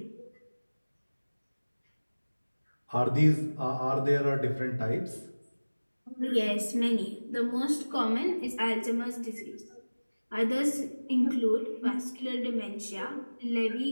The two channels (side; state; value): both; inverted; correlation -1.00